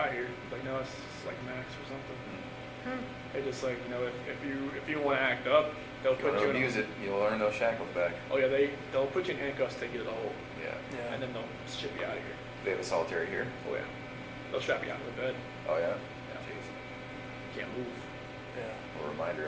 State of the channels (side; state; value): both; identical; correlation 1.00